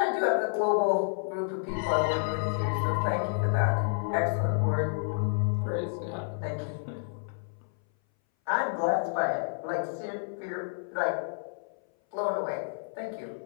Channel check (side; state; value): right; silent; 58 dB below the other